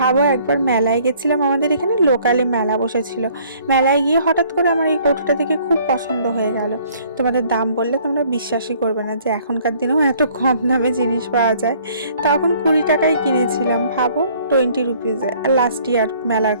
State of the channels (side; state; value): both; inverted; correlation -0.59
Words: একবার মেলায় গেছিলাম, আমাদের এখানে লোকালে মেলা বসেছিল, মেলায় গিয়ে হঠাৎ করে আমার এই কৌটোটা দেখে খুব পছন্দ হয়ে গেল। তোমাদের দাম বললে তোমরা বিশ্বাসই করবে না যে এখনকার দিনেও এত কম দামে জিনিস পাওয়া যায়। তখন 20 টাকায় কিনেছিলাম, ভাবো, 20 রুপিজে। আর লাস্ট ইয়ার মেলার